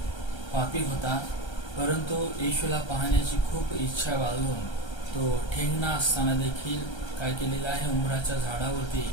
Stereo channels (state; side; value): late; right; 1.3 ms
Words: पापी होता, परंतु येशूला पाहण्याची खूप इच्छा बाळगून तो ठेंगणा असताना देखील काय केलेला आहे, उंबराच्या झाडावरती